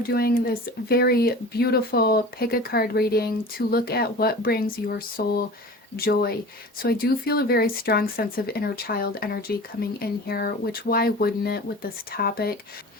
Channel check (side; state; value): both; normal; correlation 0.37